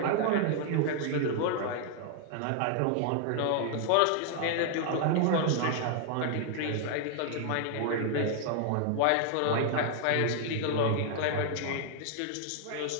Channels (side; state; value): both; different; correlation 0.00